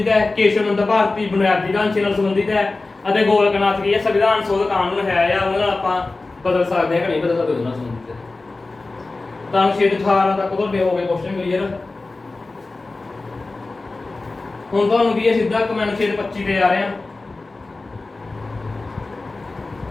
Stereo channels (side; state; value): right; quieter; 3.4 dB